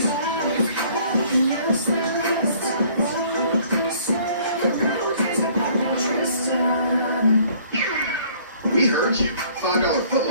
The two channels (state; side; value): inverted; both; correlation -0.58